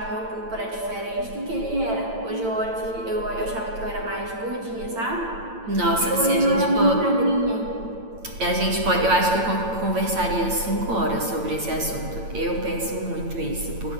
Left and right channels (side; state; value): left; late; 8.9 ms